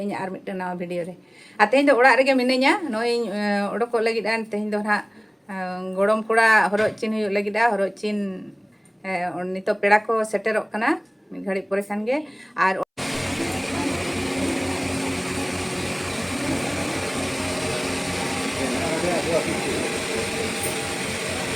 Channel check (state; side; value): identical; both; correlation 1.00